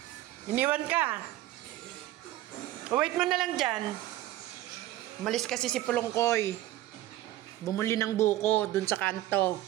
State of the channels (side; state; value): left; quieter; 15.1 dB